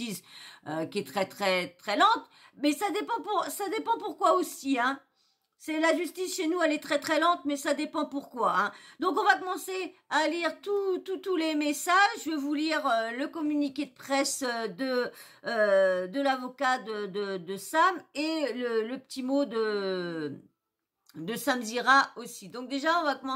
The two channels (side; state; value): both; identical; correlation 1.00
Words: qui est très très très lente, mais ça dépend pourquoi aussi, hein. C'est la justice chez nous, elle est très très lente, mais ça dépend pourquoi, hein. Donc on va commencer à lire tous les messages. Je vais vous lire le communiqué de presse de l'avocat de Sam et le petit mot de Sam Zira aussi. Donc déjà on va